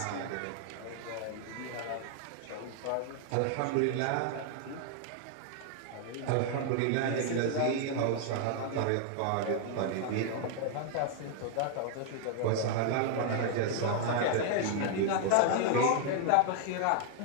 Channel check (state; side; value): different; both; correlation 0.00